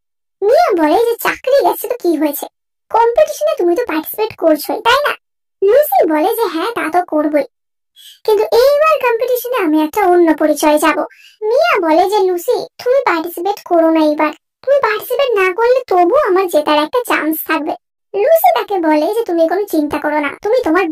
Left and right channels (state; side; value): identical; both; correlation 1.00